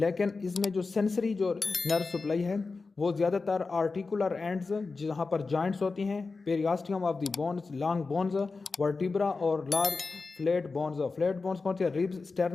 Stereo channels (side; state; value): right; quieter; 4.1 dB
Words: इसमें जो सेंसरी जो नर्व सप्लाई है वो ज़्यादातर आर्टिकुलर एंड्स जहाँ पर जॉइंट्स होती हैं, periosteum of the bones, long bones, vertebra और लार्ज फ्लैट बोन्स कौन सी है? रिब्स,